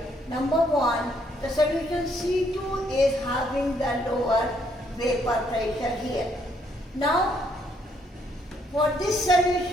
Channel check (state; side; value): normal; both; correlation 0.70